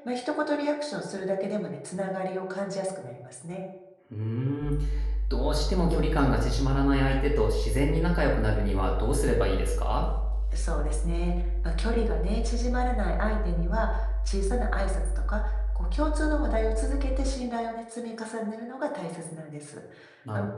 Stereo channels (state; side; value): identical; both; correlation 1.00